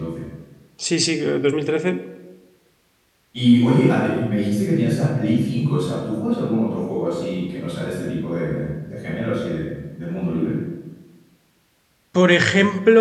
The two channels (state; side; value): identical; both; correlation 1.00